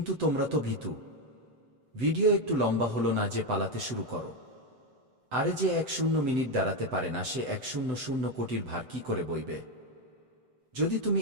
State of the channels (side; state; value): left; late; 7.8 ms